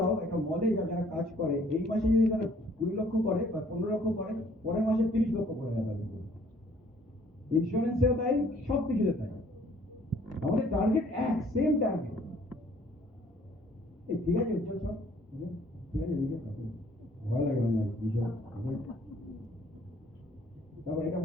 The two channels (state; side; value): normal; both; correlation 0.60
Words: একটা মলে যাও, যারা কাজ করে, এই মাসে যদি তারা 20 লক্ষ করে বা 15 লক্ষ করে, পরের মাসে 30 লক্ষ করে যাবে। ইন্স্যুরেন্সেও তাই, সব কিছুতে তাই। আমাদের টার্গেট এক, সেম টার্গেট। ঠিক আছে, উজ্জ্বল সব ঠিক আছে, ভয় লাগে না এইসব। তারপর এটা